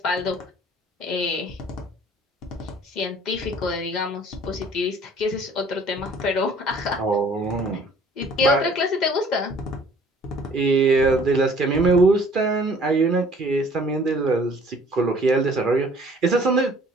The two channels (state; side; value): normal; both; correlation 0.54